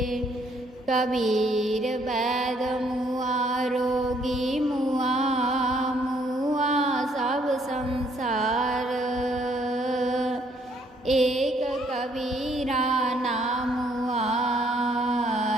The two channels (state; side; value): normal; both; correlation 0.67